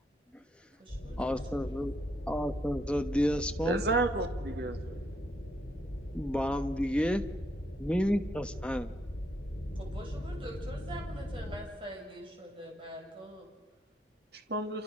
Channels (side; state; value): both; normal; correlation 0.76